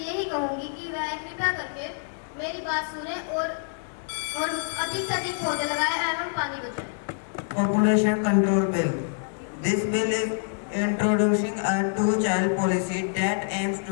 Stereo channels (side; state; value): right; silent; digital silence